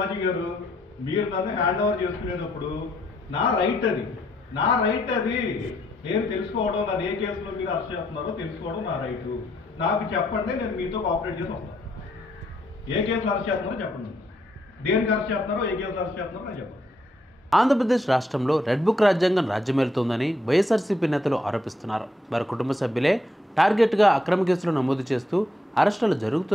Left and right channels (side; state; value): both; normal; correlation 0.73